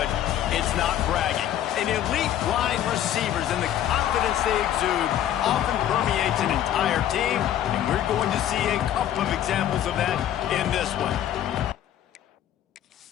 it's not bragging. An elite wide receivers and the confidence they exude often permeates an entire team, and we're going to see a couple of examples of that in this one.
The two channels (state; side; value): quieter; right; 11.3 dB